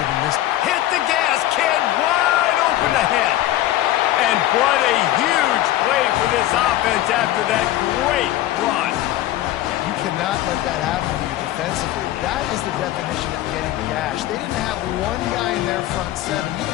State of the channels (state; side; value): quieter; right; 14.4 dB